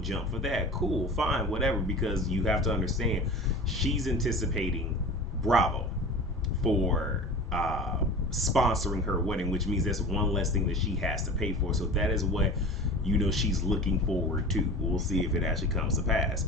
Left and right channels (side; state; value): both; normal; correlation 0.36